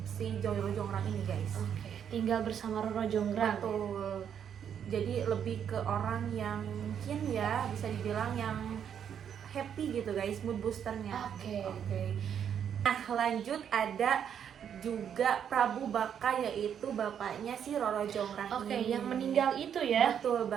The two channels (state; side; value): quieter; left; 8.5 dB